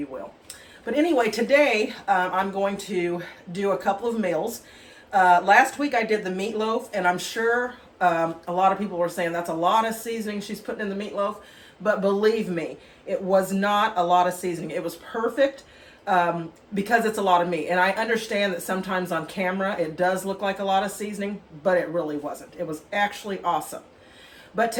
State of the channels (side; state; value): both; identical; correlation 1.00